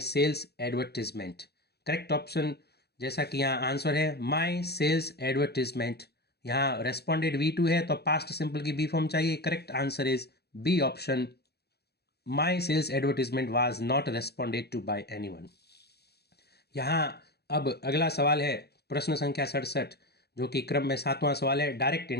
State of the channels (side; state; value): right; late; 0.47 ms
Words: sales advertisement. Correct option, जैसा कि यहाँ answer है my sales advertisement, यहाँ responded V2 है तो past simple की B form चाहिए। Correct answer is B option, my sales advertisement was not responded to by anyone. यहाँ अब अगला सवाल है प्रश्न संख्या 67, जो कि क्रम में 7वां सवाल है। डायरेक्ट